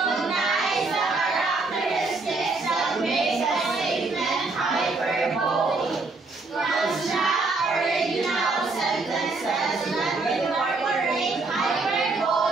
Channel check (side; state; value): left; quieter; 3.6 dB